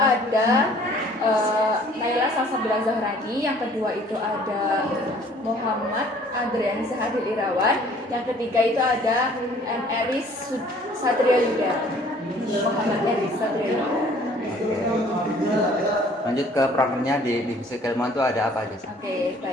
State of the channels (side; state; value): both; normal; correlation 0.55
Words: Naila Salsabila Zahrani, yang kedua itu ada Muhammad Adrian Zahadil Irawan, yang ketiga itu ada Eris Satria Yuda. Muhammad Eris Satria Yuda. Lanjut ke prokernya di divisi keilmuan itu ada apa aja sih? Oke,